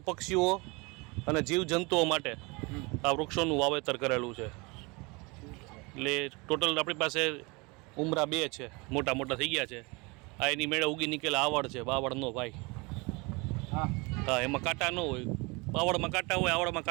પક્ષીઓ અને જીવજંતુઓ માટે આ વૃક્ષોનું વાવેતર કરેલું છે. એટલે ટોટલ આપણી પાસે ઉમરા 2 છે, મોટા મોટા થઈ ગયા છે. આ એની મેળે ઉગી નીકળેલા આવડ છે, બાવળનો ભાઈ. હા, એમાં કાંટા ન હોય. બાવળમાં કાંટા હોય, આવડમાં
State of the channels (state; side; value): quieter; left; 27.0 dB